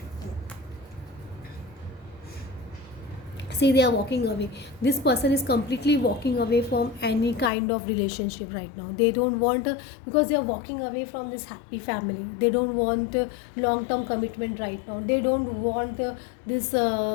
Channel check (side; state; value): right; drops out; at 7.5 s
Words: See, they are walking away. This person is completely walking away from any kind of relationship right now. They don't want because they are walking away from this happy family. They don't want long term commitment right now. They don't want this